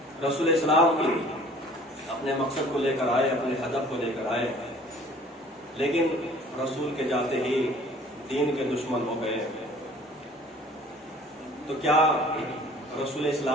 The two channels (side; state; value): both; normal; correlation 0.51